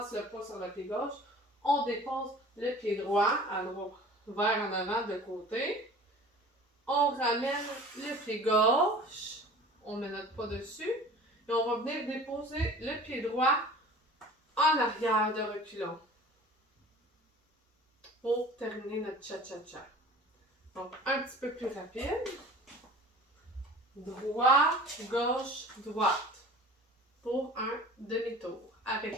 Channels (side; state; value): both; normal; correlation 0.44